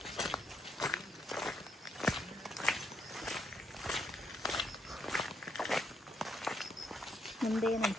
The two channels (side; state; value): both; normal; correlation 0.75